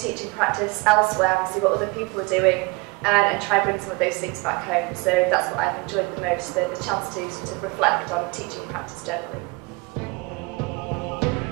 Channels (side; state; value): left; quieter; 26.3 dB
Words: practice elsewhere and see what other people are doing, and try and bring some of those things back home. So that's what I've enjoyed the most, the chance to sort of reflect on teaching practice generally.